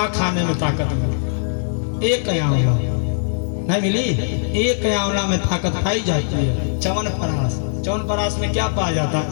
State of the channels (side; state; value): right; silent; digital silence